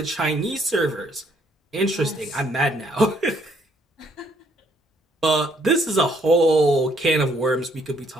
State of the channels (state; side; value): normal; both; correlation 0.68